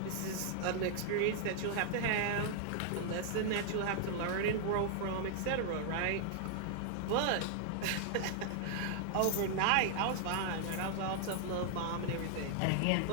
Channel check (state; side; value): different; both; correlation 0.00